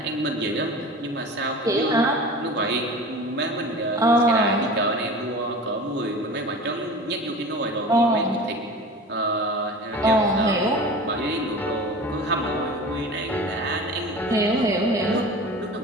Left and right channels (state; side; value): normal; both; correlation 0.36